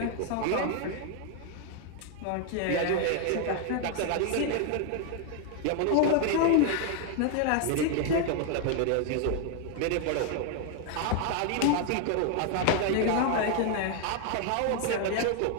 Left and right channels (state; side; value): different; both; correlation 0.01